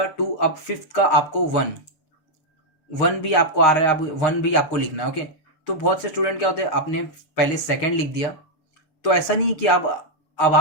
का आपको 1 भी आपको आ रहा है, अब 1 भी आपको लिखना है। ओके, तो बहुत से स्टूडेंट क्या होते हैं, आपने पहले सेकंड लिख दिया, तो ऐसा नहीं कि अब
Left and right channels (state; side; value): late; right; 6.9 ms